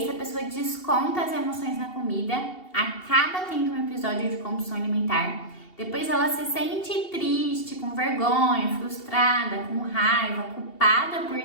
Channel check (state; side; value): late; right; 2.7 ms